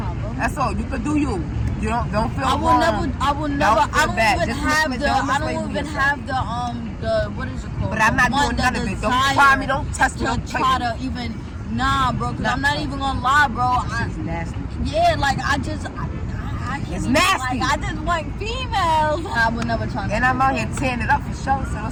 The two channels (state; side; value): identical; both; correlation 1.00